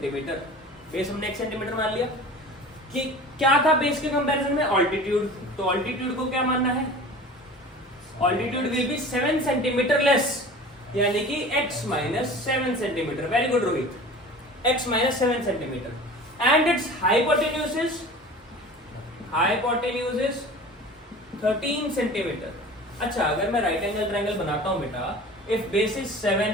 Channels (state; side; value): normal; both; correlation 0.39